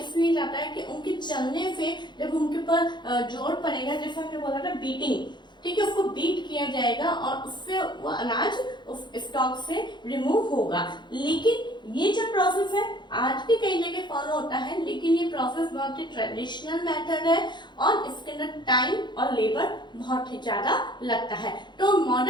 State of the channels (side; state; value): right; late; 0.22 ms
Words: जाता है कि उनके चलने से जब उनके ऊपर जोर पड़ेगा, जैसे हमने बोला था बीटिंग, ठीक है, उसको बीट किया जाएगा और उससे वो अनाज उस स्टॉक से रिमूव होगा। लेकिन ये जो प्रोसेस है आज भी कई जगह फॉलो होता है, लेकिन ये प्रोसेस बहुत ही ट्रेडिशनल मेथड है और इसके अंदर टाइम और लेबर बहुत ही ज्यादा लगता है। तो